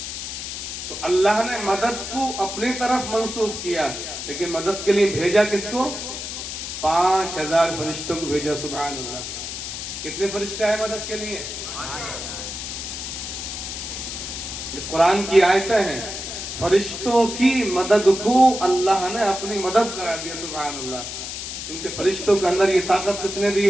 تو اللہ نے مدد کو اپنی طرف منسوب کیا، لیکن مدد کے لیے بھیجا کس کو؟ 5000 فرشتوں کو بھیجا، سبحان اللہ۔ کتنے فرشتے آئے مدد کے لیے؟ یہ قرآن کی آیتیں ہیں، فرشتوں کی مدد کو اللہ نے اپنی مدد قرار دیا، سبحان اللہ، کیونکہ فرشتوں کے اندر یہ طاقت کس نے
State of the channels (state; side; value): noise; left; hiss, 7 dB below the sound